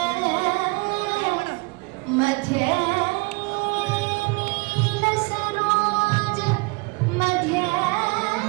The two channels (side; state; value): left; quieter; 27.9 dB